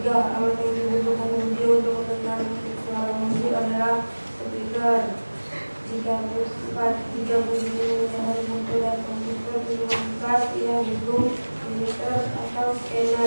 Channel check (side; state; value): both; inverted; correlation -1.00